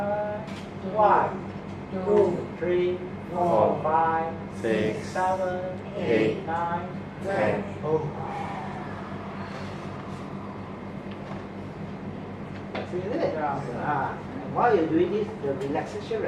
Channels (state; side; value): identical; both; correlation 1.00